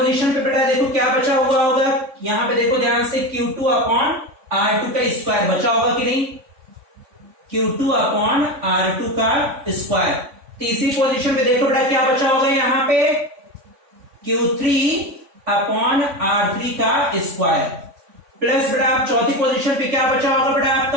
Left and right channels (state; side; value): late; left; 3.5 ms